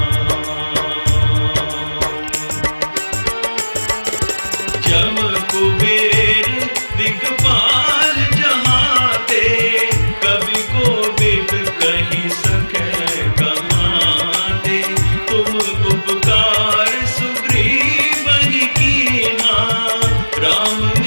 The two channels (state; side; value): inverted; both; correlation -1.00